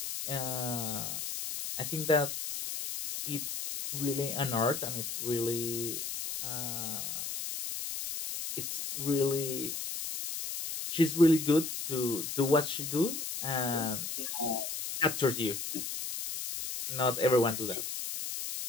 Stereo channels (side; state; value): left; noise; hiss, 5 dB below the sound